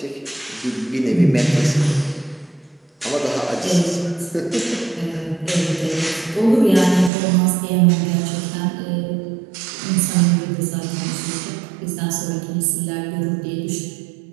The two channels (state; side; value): drops out; left; at 7.1 s